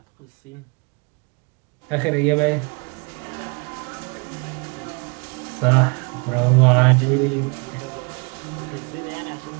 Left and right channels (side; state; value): left; quieter; 32.2 dB